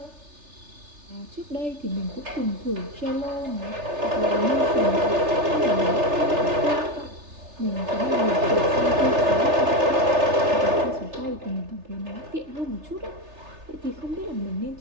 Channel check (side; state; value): left; late; 3.3 ms